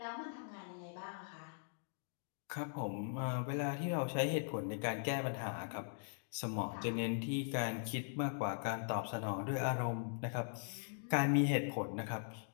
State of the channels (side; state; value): right; silent; digital silence